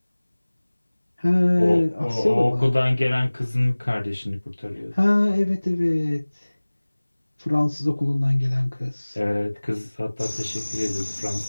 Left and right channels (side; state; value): both; inverted; correlation -1.00